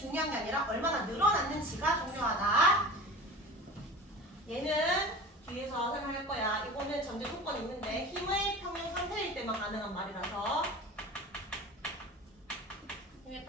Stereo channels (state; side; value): normal; both; correlation 0.36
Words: 게 아니라 얼마나 늘어났는지가 중요하다. 얘는 뒤에서 설명할 거야. 이거는 전제 조건이 있는데 힘의 평형 상태일 때만 가능한 말이라서 힘의